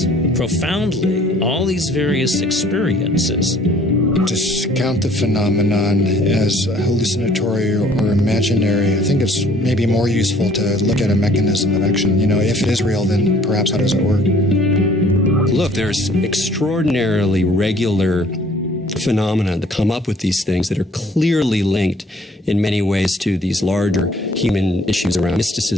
profoundly all these various experiences. Discount the phenomenon as hallucinatory or imaginary. I think it's maybe more useful to look at a mechanism of action. If it is real, then perhaps how does it work? Look, there's extraordinarily regular phenomena that come up with these things that are clearly linked in many ways to these larger human issues around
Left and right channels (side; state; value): both; normal; correlation 0.57